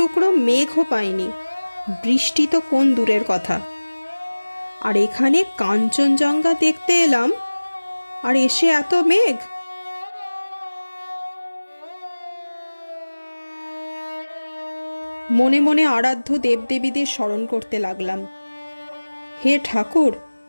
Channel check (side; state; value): both; inverted; correlation -1.00